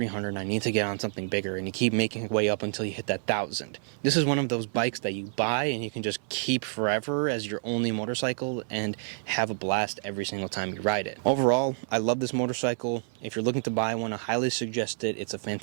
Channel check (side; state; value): left; silent; 56 dB below the other